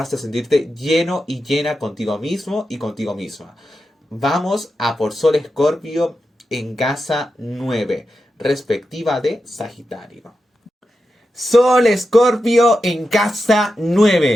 a sentirte lleno y llena contigo mismo y contigo misma. Vamos a por Sol Escorpio en casa 9, respectiva de Sagitario. Sol Escorpio en casa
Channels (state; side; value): normal; both; correlation 0.89